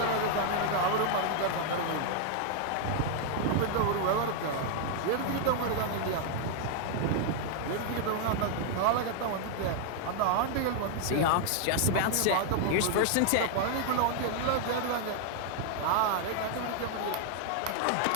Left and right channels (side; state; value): both; different; correlation 0.00